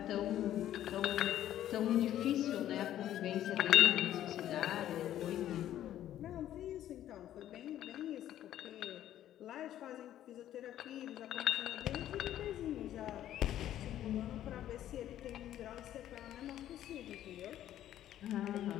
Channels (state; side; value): quieter; right; 12.1 dB